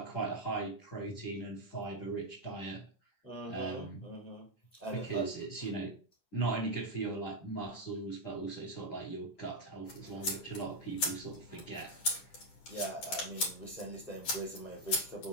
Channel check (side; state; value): right; late; 10 ms